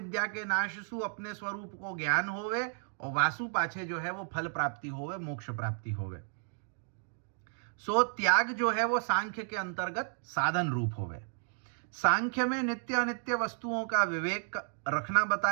के नाश सु अपने स्वरूप को ज्ञान होवे, और वासु पाछे जो है वो फल प्राप्ति होवे, मोक्ष प्राप्ति होवे। सो त्याग जो है वो सांख्य के अंतर्गत साधन रूप होवे। सांख्य में नित्य अनित्य वस्तुओं का विवेक रखना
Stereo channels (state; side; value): silent; left; 56 dB below the other